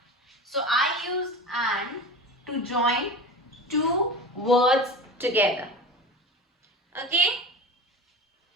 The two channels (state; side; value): normal; both; correlation 0.31